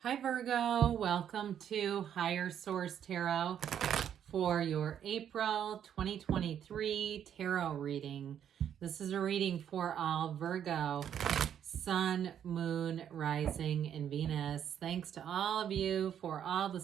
Hi Virgo, welcome to Higher Source Tarot for your April 2023 tarot reading. This is a reading for all Virgo, Sun, Moon, Rising, and Venus. Thanks to all of you for all the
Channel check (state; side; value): quieter; left; 9.3 dB